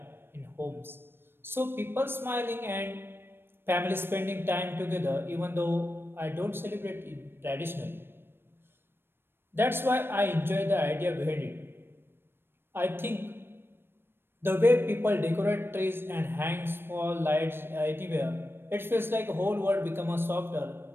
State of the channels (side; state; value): left; late; 0.10 ms